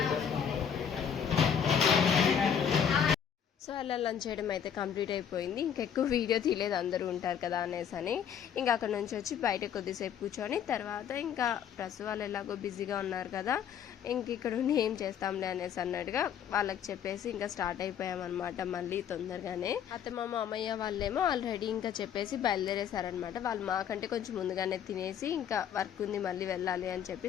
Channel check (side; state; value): right; quieter; 8.4 dB